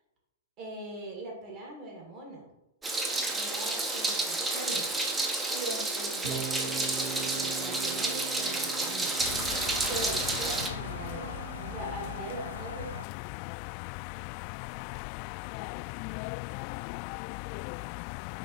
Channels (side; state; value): right; drops out; at 13.1 s